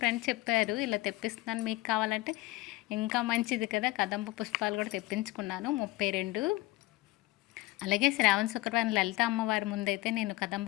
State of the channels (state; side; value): quieter; right; 19.6 dB